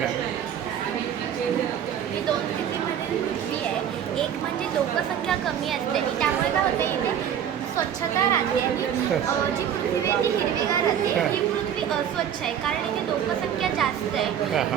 ही दोन स्थितीमध्ये पृथ्वी आहे. एक म्हणजे लोकसंख्या कमी असते आणि त्यामुळे काय होते इथे स्वच्छता राहते आणि जी पृथ्वी आहे ती हिरवीगार राहते. ही पृथ्वी अस्वच्छ आहे कारण इथे लोकसंख्या जास्त आहे.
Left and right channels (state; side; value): quieter; left; 9.2 dB